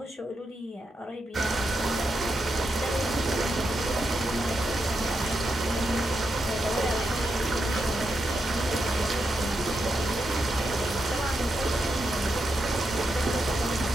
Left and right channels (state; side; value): normal; both; correlation 0.85